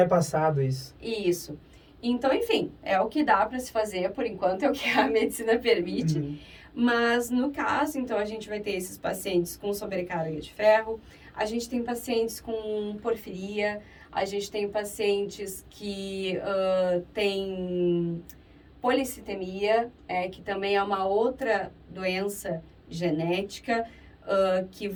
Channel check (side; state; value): both; identical; correlation 1.00